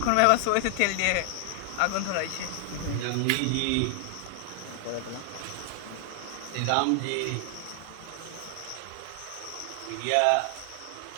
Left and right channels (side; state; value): both; different; correlation 0.00